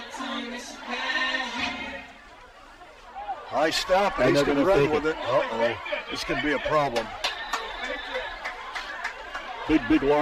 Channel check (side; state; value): both; identical; correlation 1.00